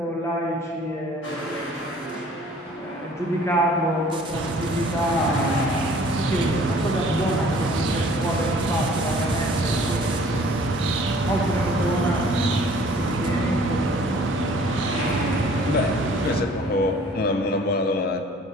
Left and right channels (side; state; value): both; normal; correlation 0.53